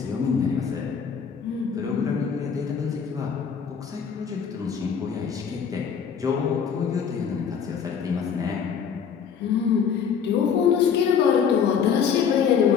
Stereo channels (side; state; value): right; quieter; 7.1 dB